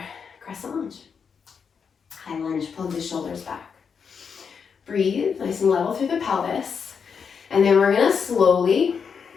crescent lunge. High lunge, plug the shoulders back. Breathe, nice and level through the pelvis. And then we're gonna slowly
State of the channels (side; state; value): right; quieter; 6.3 dB